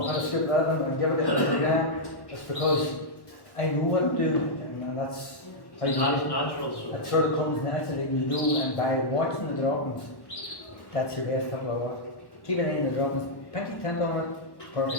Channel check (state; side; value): late; right; 1.1 ms